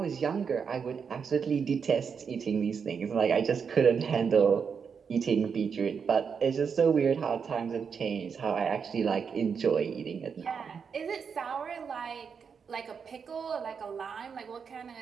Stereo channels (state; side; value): quieter; left; 6.3 dB